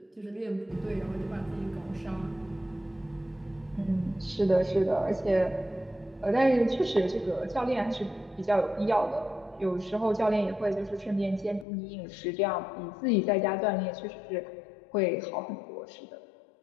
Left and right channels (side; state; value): right; drops out; at 11.7 s